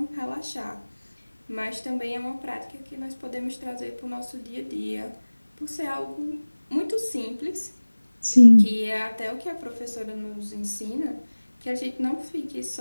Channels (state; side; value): inverted; both; correlation -1.00